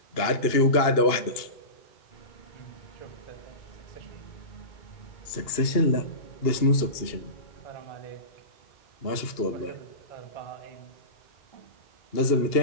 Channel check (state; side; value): late; right; 2.8 ms